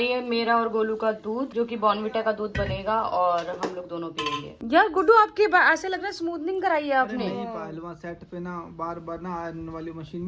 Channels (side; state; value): both; identical; correlation 1.00